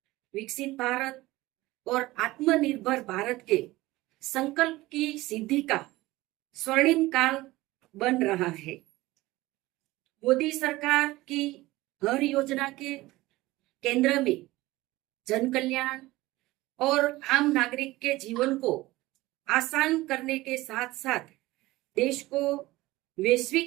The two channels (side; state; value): left; quieter; 18.8 dB